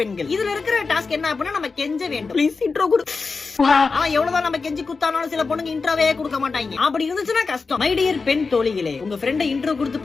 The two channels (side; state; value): right; quieter; 4.4 dB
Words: இதுல இருக்கிற டாஸ்க் என்ன அப்படின்னா நம்ம கெஞ்ச வேண்டும். ப்ளீஸ் இன்ட்ரோ கொடு. எவ்வளவுதான் நம்ம கெஞ்சி குத்தானாலும் சில பொண்ணுங்க இன்ட்ரோவே கொடுக்க மாட்டாங்க. அப்படி இருந்துச்சுன்னா கஷ்டம். மை டியர் பெண் தோழிகளே, உங்க ஃப்ரெண்ட இன்ட்ரோ கொடுத்து